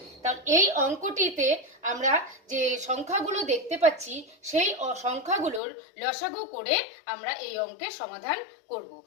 তাহলে এই অঙ্কটিতে আমরা যে সংখ্যাগুলো দেখতে পাচ্ছি সেই সংখ্যাগুলোর লসাগু করে আমরা এই অঙ্কের সমাধান করব।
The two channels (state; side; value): drops out; right; at 5.6 s